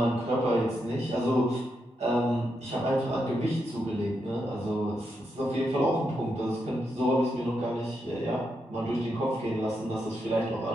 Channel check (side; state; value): both; normal; correlation 0.83